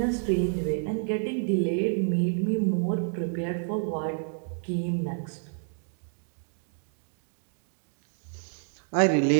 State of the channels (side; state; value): left; silent; 59 dB below the other